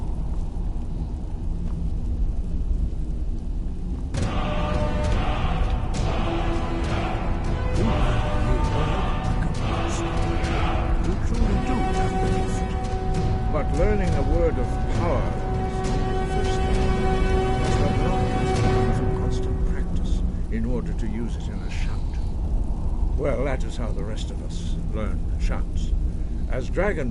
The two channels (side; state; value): both; identical; correlation 1.00